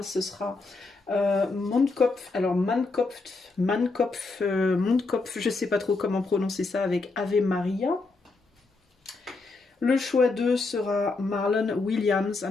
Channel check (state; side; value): quieter; right; 3.7 dB